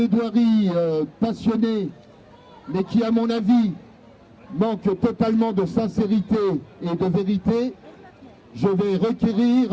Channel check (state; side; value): identical; both; correlation 1.00